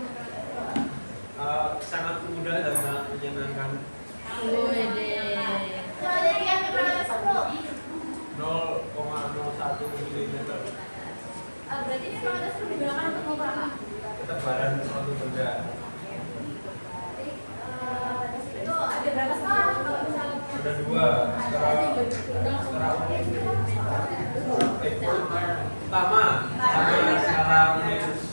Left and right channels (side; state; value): both; inverted; correlation -1.00